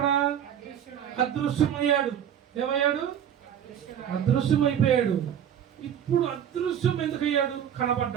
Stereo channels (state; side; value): quieter; left; 9.4 dB